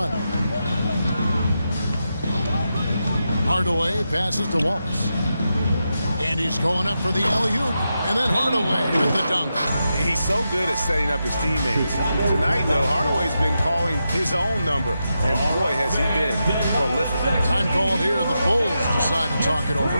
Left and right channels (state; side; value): inverted; both; correlation -0.87